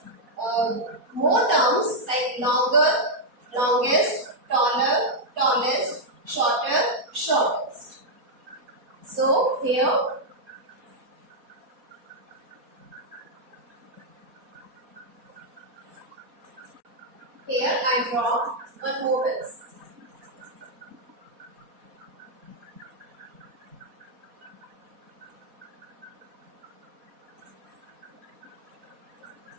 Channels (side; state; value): left; late; 4.2 ms